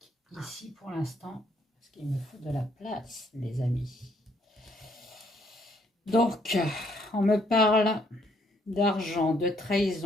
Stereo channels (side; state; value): both; normal; correlation 0.69